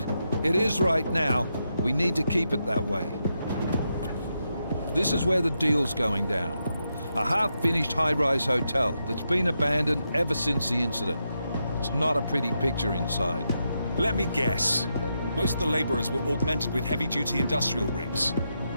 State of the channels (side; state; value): both; inverted; correlation -0.84